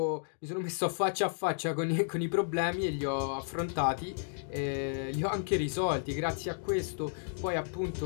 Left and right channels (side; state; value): right; silent; digital silence